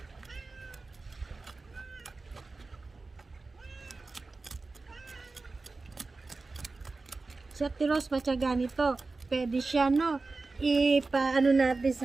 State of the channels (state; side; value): quieter; left; 3.7 dB